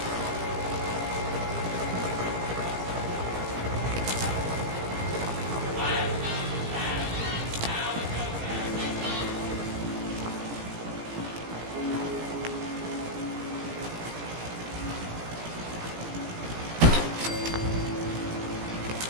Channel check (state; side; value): late; left; 17 ms